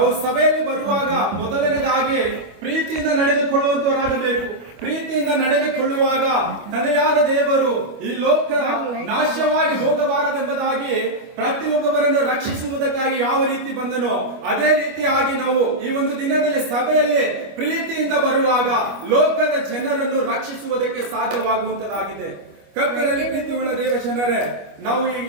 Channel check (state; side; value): late; left; 25 ms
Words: ಸಭೆಯಲ್ಲಿ ಬರುವಾಗ ಮೊದಲನೇದಾಗಿ ಪ್ರೀತಿಯಿಂದ ನಡೆದುಕೊಳ್ಳುವಂತವರಾಗಬೇಕು. ಪ್ರೀತಿಯಿಂದ ನಡೆದುಕೊಳ್ಳುವಾಗ ತಂದೆಯಾದ ದೇವರು ಈ ಲೋಕ ನಾಶವಾಗಿ ಹೋಗಬಾರದೆಂಬುದಾಗಿ ಪ್ರತಿಯೊಬ್ಬರನ್ನು ರಕ್ಷಿಸುವುದಕ್ಕಾಗಿ ಯಾವ ರೀತಿ ಬಂದನೋ ಅದೇ ರೀತಿಯಾಗಿ ನಾವು ಈ ಒಂದು ದಿನದಲ್ಲಿ ಸಭೆಯಲ್ಲಿ ಪ್ರೀತಿಯಿಂದ ಬರುವಾಗ ಲೋಕದ ಜನರನ್ನು ರಕ್ಷಿಸುವುದಕ್ಕೆ ಸಾಧ್ಯವಾಗುವಂತದಾಗಿದೆ. ಕರ್ತನಲ್ಲಿ ಪ್ರೀತಿ ಉಳ್ಳ ದೇವಜನರೇ, ನಾವು ಈ